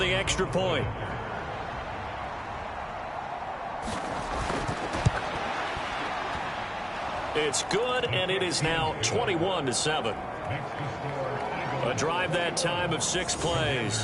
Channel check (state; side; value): identical; both; correlation 1.00